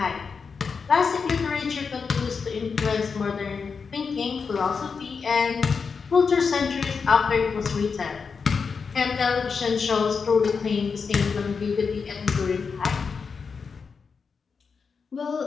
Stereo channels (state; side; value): quieter; right; 5.4 dB